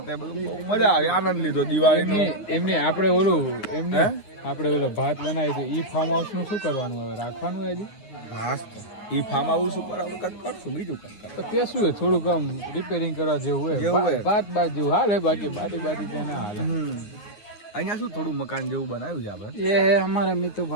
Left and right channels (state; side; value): late; right; 9.6 ms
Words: તે બધું મજા આવી આનંદ લીધો દિવાળીનો. એમને આપણે ઓલો ભાત બનાવી તો ઈ ફાર્મ હાઉસ નું શું કરવાનું હવે રાખવાનું હજી? હા ઈ ફાર્મ હાઉસ ઉપર આપણે કંઈક કરશું બીજું કંઈક તો તે શું હોય થોડુંક આમ રિપેરિંગ કરવા જેવું હોય ભાત જેવું હાલે બાકી બાટી ત્યાં ના હાલે. અહીંયા શું થોડું મકાન જેવું બનાવ્યું છે આપણે ये है हमारा